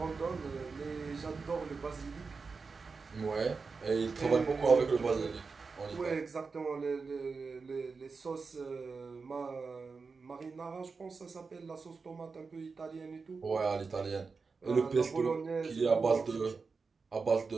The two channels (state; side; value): quieter; left; 4.7 dB